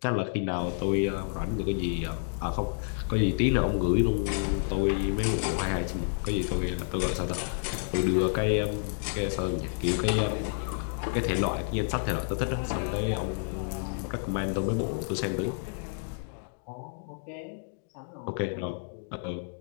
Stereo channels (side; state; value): right; silent; digital silence